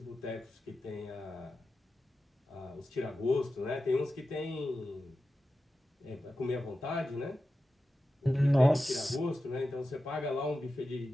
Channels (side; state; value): both; normal; correlation 0.92